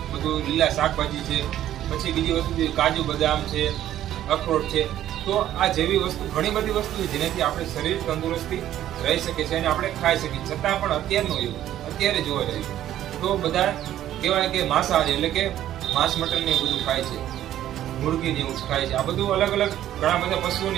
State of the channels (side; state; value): left; quieter; 12.3 dB